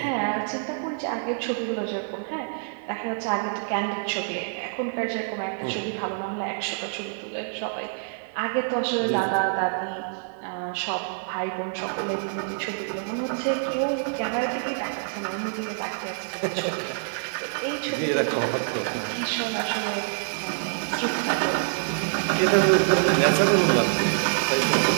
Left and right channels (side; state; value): left; silent; digital silence